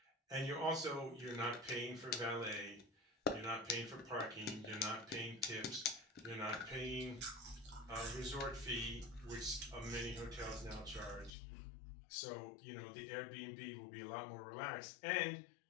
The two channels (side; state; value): right; drops out; at 11.3 s